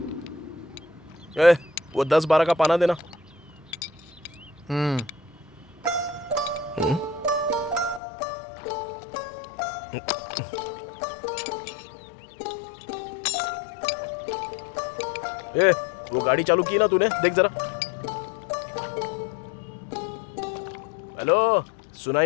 वो 10-12 का पाना देना। वो गाड़ी चालू की ना तूने? देख जरा। हेलो, सुनाई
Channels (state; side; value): drops out; right; at 8.0 s